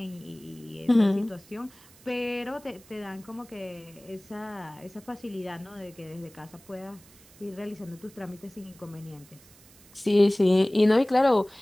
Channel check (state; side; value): noise; right; hiss, 25 dB below the sound